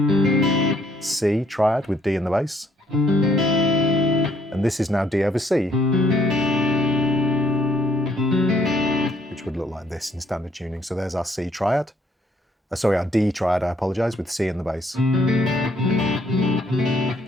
C triad with D in the bass. And this is now D over C, which would look like this in standard tuning. So there's our C triad. Our D triad, I apologise, with C in the bass.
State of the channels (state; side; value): normal; both; correlation 0.67